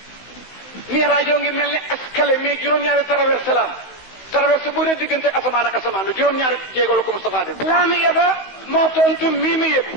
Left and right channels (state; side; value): late; right; 16 ms